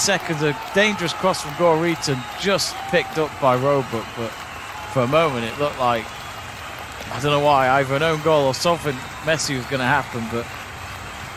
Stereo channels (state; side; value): identical; both; correlation 1.00